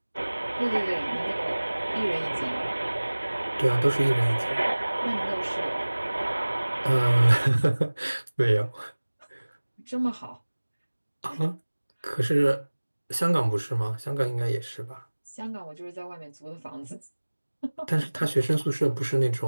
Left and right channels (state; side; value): inverted; both; correlation -1.00